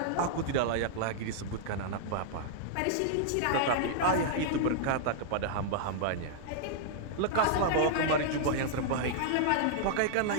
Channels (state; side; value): different; both; correlation -0.01